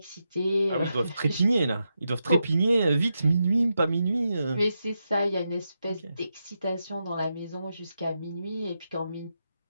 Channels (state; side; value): inverted; both; correlation -0.86